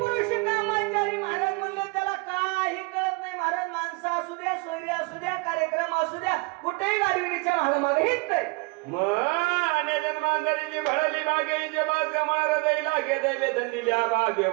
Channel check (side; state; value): left; quieter; 28.8 dB